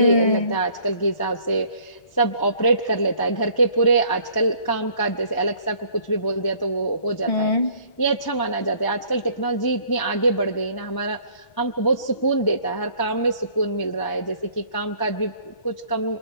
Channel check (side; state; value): right; late; 1.0 ms